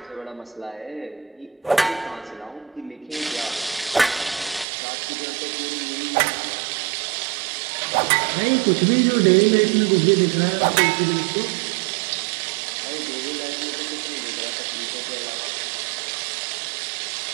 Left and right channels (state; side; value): drops out; left; at 4.7 s